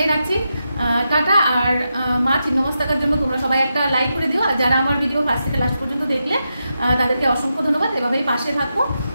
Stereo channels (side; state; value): both; inverted; correlation -0.87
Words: রাখছি, টাটা। আর মা ছিন্নমস্তাকার জন্য তোমরা সবাই একটা লাইক করে দিও, আর যারা আমার ভিডিও ফার্স্ট থেকে লাস্ট পর্যন্ত দেখলে তাদেরকে অসংখ্য ধন্যবাদ, এভাবেই পাশে থাকো।